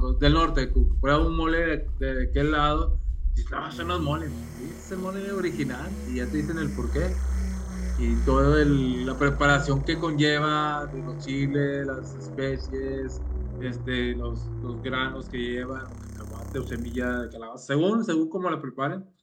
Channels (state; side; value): identical; both; correlation 1.00